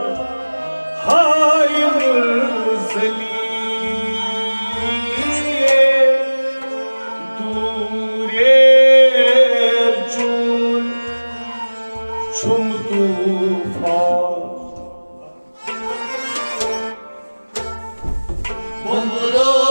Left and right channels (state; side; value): inverted; both; correlation -1.00